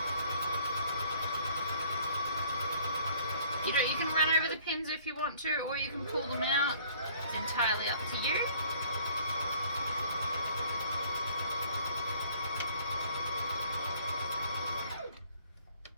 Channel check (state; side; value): inverted; both; correlation -0.56